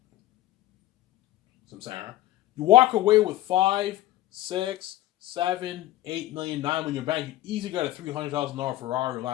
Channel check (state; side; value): quieter; right; 15.2 dB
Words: Some Sarah. You walk away with 5, 6, 7, 8 million, 9 million in your bank, you easily got a $300,000 Ferrari or